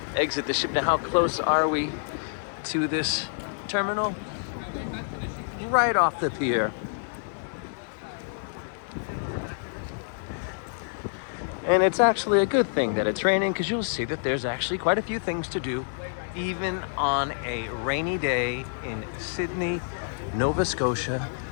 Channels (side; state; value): right; silent; 60 dB below the other